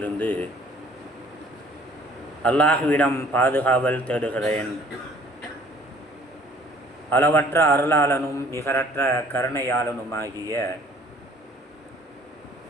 அல்லாஹ்விடம் பாதுகாவல் தேடுகிறேன். அளவற்ற அருளாளனும் நிகரற்ற கருணையாளனுமாகிய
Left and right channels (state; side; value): normal; both; correlation 0.55